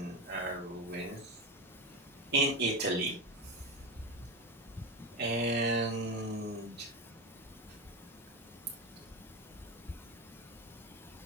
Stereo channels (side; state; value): both; normal; correlation 0.18